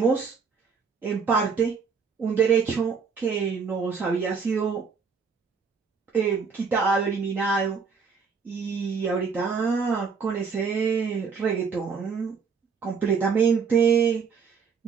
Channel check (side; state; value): left; quieter; 5.6 dB